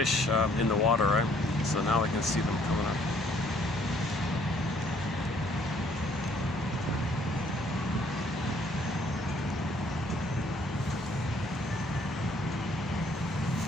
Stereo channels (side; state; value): both; normal; correlation 0.63